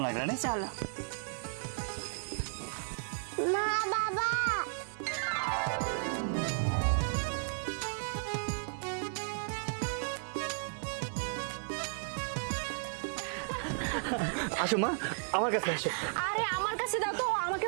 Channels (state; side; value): silent; left; digital silence